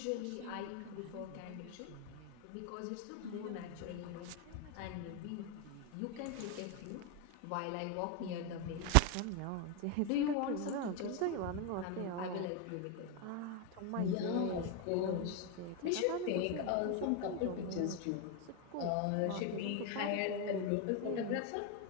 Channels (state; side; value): different; both; correlation 0.02